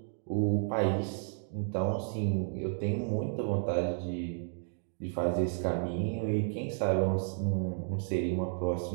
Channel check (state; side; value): silent; left; digital silence